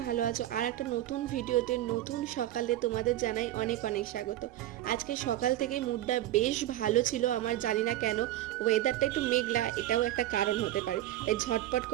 ভালো আছো। আর একটা নতুন ভিডিওতে নতুন সকালে তোমাদের জানাই অনেক অনেক স্বাগত। আজকে সকাল থেকে মুডটা বেশ ভালো ছিল আমার, জানি না কেন। ওয়েদারটা একটু মেঘলা, এটাও একটা কারণ হতে পারে। তাই ঝটপট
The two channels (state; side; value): quieter; left; 14.0 dB